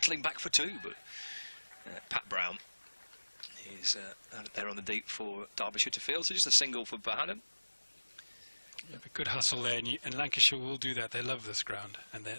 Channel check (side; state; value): both; inverted; correlation -1.00